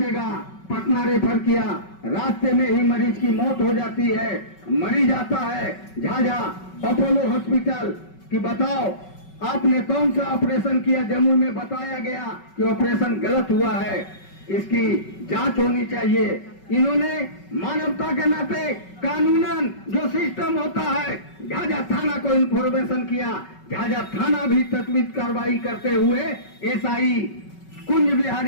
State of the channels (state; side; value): late; right; 5.3 ms